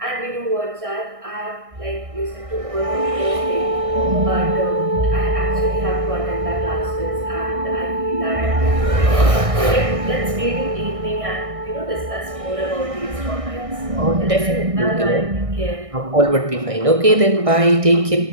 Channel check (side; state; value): left; late; 1.6 ms